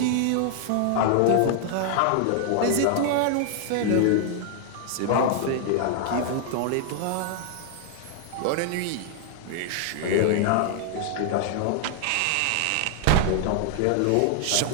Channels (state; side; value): different; both; correlation 0.00